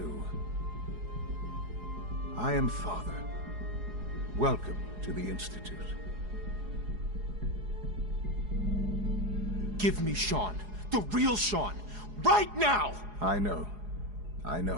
I am Father. Welcome to the Institute. Give me Sean. The real Sean. Right now! I know. I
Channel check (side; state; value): left; late; 4.8 ms